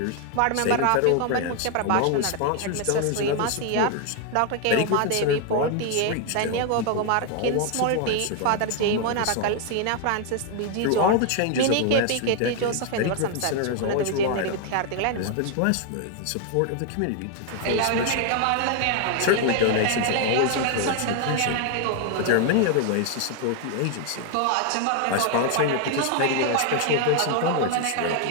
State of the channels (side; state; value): both; different; correlation 0.00